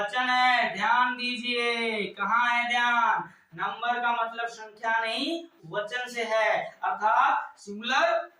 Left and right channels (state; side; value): identical; both; correlation 1.00